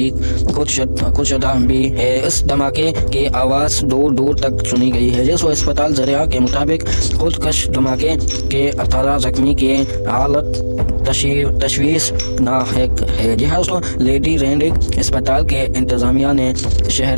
खुदशदा भी है। इस धमाके की आवाज़ दूर दूर तक सुनी गई है। जिस अस्पताल ज़रिया के मुताबिक खुदकश धमाके के 18 जख्मी की हालत तशवीशनाक है। जी हाँ दोस्तों, लेडी रेंडिक अस्पताल के इंतजामिया ने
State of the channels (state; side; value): inverted; both; correlation -1.00